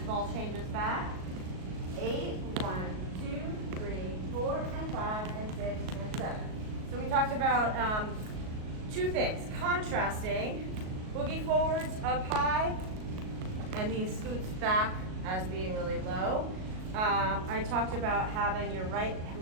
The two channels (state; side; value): late; left; 38 ms